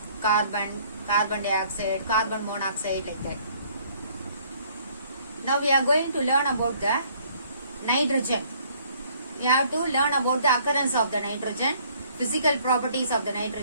carbon dioxide, carbon monoxide, like that. Now we are going to learn about the nitrogen. We have to learn about the occurrence of the nitrogen, physical properties of the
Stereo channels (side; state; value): both; inverted; correlation -0.61